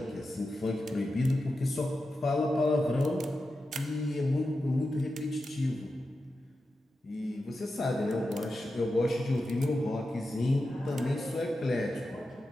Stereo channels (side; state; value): both; normal; correlation 0.91